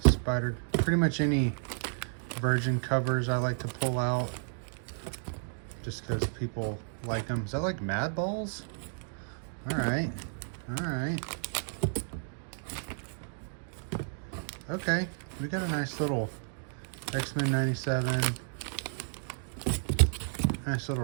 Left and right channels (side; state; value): left; silent; digital silence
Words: Spider. Pretty much any Virgin covers I like to pull out, just because people like them. Is that like Mad Balls? Alright. Alright. Okay. We got a nice little X-Men 97. Nice little